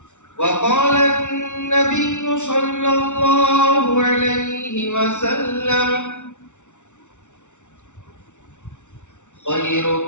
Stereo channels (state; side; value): late; right; 0.85 ms